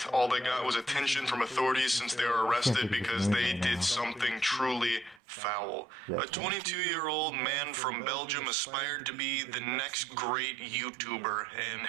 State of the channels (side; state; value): left; drops out; at 5.2 s